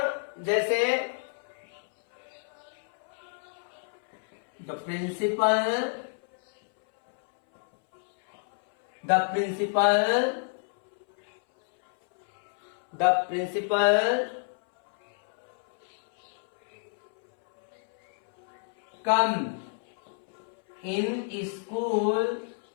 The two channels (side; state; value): right; silent; 59 dB below the other